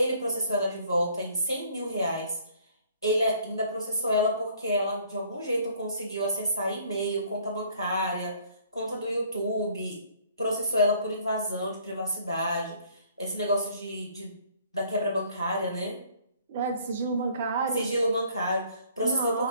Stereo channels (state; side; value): inverted; both; correlation -0.59